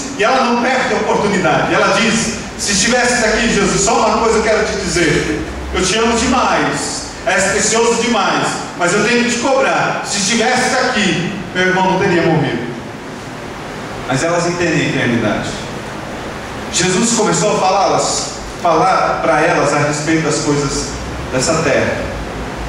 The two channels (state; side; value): identical; both; correlation 1.00